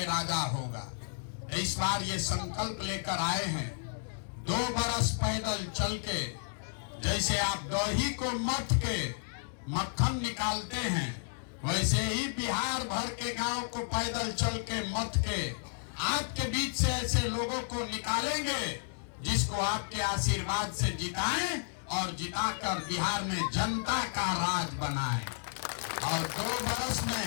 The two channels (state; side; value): silent; right; digital silence